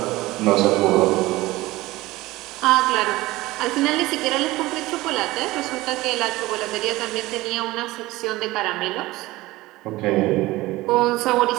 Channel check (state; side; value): quieter; left; 19.0 dB